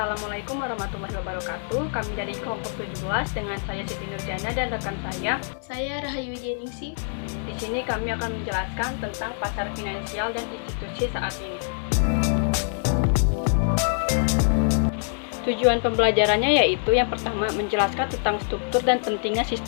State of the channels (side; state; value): right; silent; digital silence